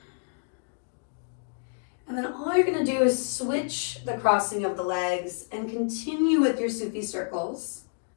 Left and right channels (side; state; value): right; silent; digital silence